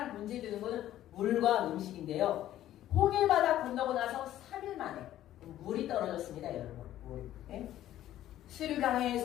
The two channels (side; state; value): right; quieter; 13.0 dB